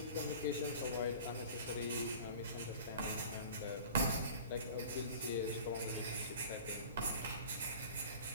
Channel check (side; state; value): both; inverted; correlation -0.41